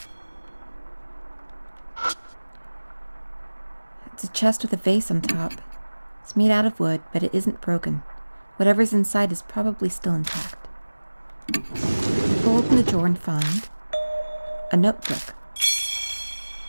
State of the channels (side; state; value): both; inverted; correlation -1.00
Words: It's a chest with a vase on top. It's made out of wood, but it isn't broken. Whatever's inside is probably still intact. I pull open the drawer and find a notebook.